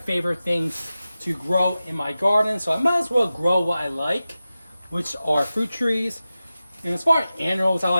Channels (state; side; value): inverted; both; correlation -0.94